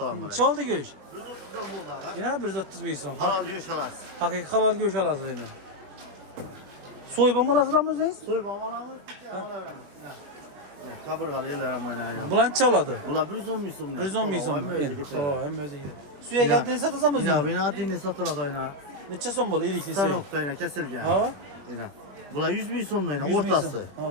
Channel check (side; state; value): left; late; 21 ms